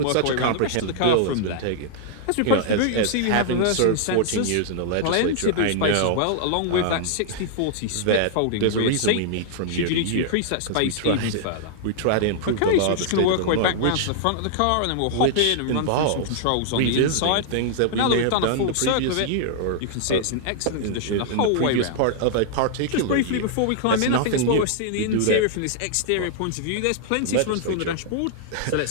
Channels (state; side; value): different; both; correlation -0.01